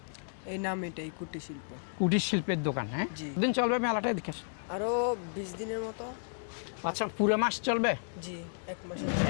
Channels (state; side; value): silent; right; digital silence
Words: এই নাম এটাই কুটির শিল্প। কুটির শিল্পের দোকান। হ্যাঁ, জি। দিন চলবে মেলাটা? দেখে আরো 20 দিনের মতো। আচ্ছা, পুরো মাস চলবে? জি, 1 মাস।